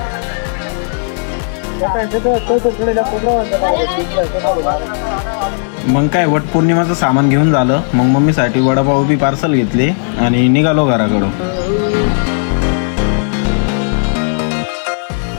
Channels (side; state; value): right; silent; digital silence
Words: मग काय, वट पौर्णिमाचं सामान घेऊन झालं, मग मम्मीसाठी वडापाव बी पार्सल घेतले आणि निघालो घराकडं.